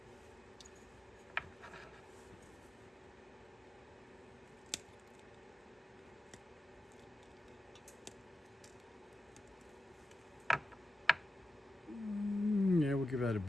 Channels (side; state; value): both; normal; correlation 0.91